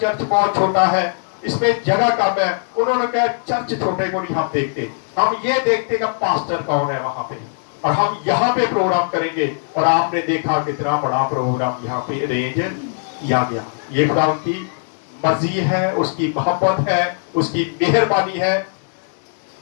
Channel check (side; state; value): right; silent; digital silence